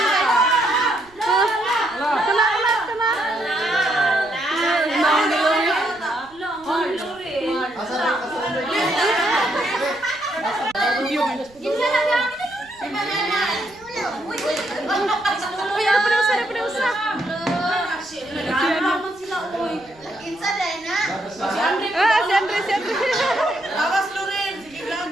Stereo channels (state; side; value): noise; right; rumble, 27 dB below the sound